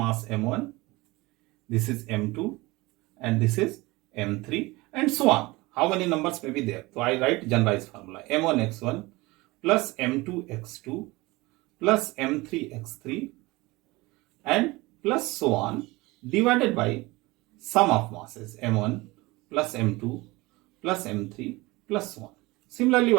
m1, this is m2, and this is m3, and so on. How many numbers may be there? So I write generalized formula: m1 x1 plus m2 x2 plus m3 x3 and plus so on, divided by sum of masses m1 plus m2 plus m3 plus so on. Similarly,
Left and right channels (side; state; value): left; quieter; 21.9 dB